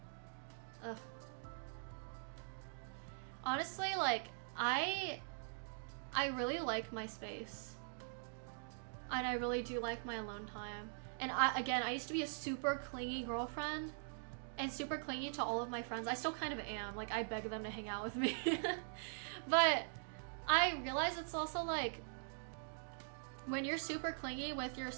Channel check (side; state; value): left; silent; digital silence